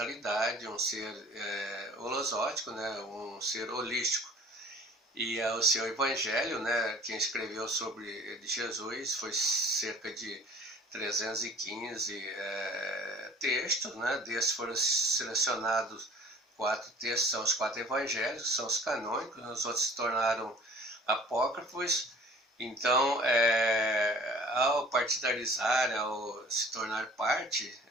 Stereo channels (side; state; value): both; normal; correlation 0.48